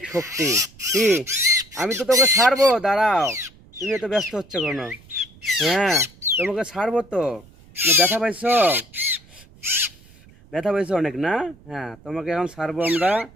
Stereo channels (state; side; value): noise; right; rumble, 25 dB below the sound